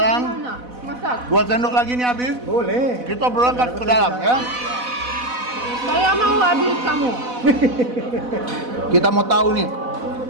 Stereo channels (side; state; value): left; late; 4.0 ms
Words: gimana masak. 2 sendok lagi nih habis. Boleh. Kita berangkat ke dalam ya. Saya mau habis kamu. Kita mau tahu nih.